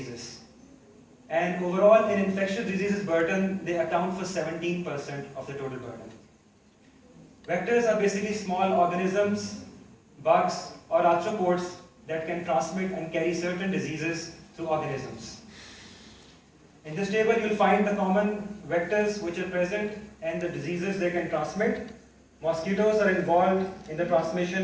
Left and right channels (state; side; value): identical; both; correlation 1.00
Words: And overall, in infectious diseases burden, they account for 17% of the total burden. Vectors are basically small organisms, bugs, or arthropods that can transmit and carry certain diseases through organisms. In this table, you'll find the common vectors which are present and the diseases they can transmit. Mosquitoes are involved in the